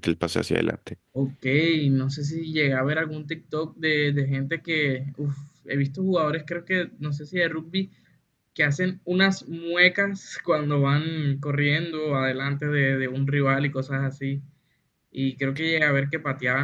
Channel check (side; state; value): both; identical; correlation 1.00